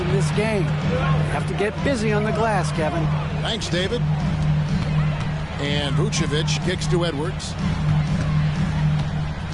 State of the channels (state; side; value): identical; both; correlation 1.00